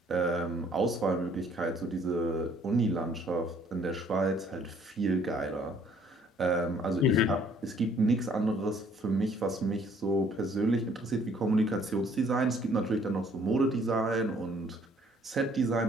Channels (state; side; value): normal; both; correlation 0.61